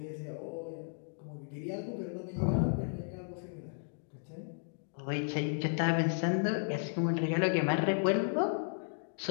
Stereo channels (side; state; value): right; silent; digital silence